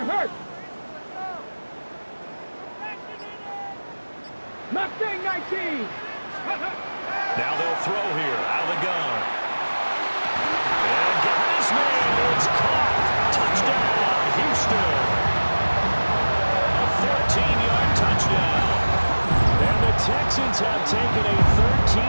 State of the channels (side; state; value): both; inverted; correlation -1.00